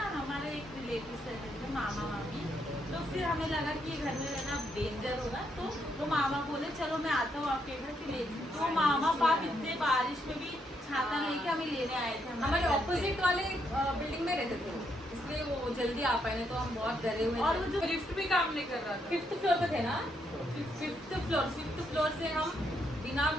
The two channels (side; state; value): both; normal; correlation 0.76